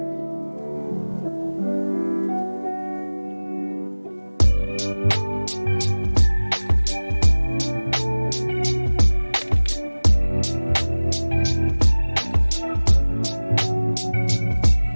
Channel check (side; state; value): both; inverted; correlation -1.00